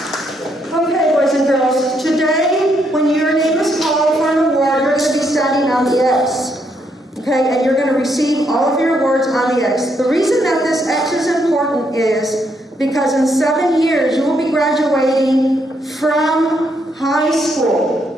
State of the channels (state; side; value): normal; both; correlation 0.75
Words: Okay, boys and girls, today when your name is called for an award, you're going to be standing on the X. Okay, and you're going to receive all of your awards on the X. The reason that this X is important is because in 7 years you will be graduating from high